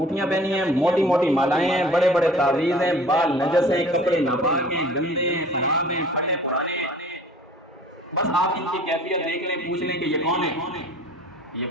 پہنی ہیں، موٹی موٹی مالائیں ہیں، بڑے بڑے تعویذ ہیں، بال نجس ہیں، کپڑے ناپاک ہیں، گندے ہیں، خراب ہیں، پھٹے پرانے ہیں. بس آپ ان کی کیفیت دیکھ لیں، پوچھ لیں کہ یہ کون ہے. یہ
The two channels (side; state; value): both; normal; correlation 0.48